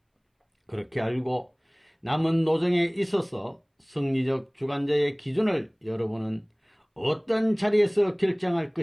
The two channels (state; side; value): identical; both; correlation 1.00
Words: 그렇게 알고 남은 노정에 있어서 승리적 주관자의 기준을 여러분은 어떤 자리에서 결정할